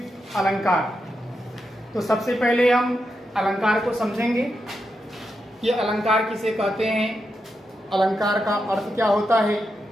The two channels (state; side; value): normal; both; correlation 0.86